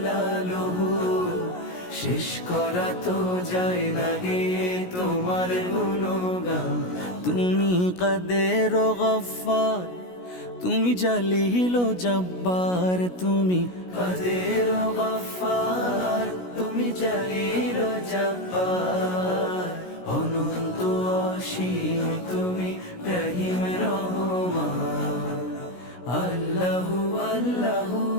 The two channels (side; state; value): right; late; 16 ms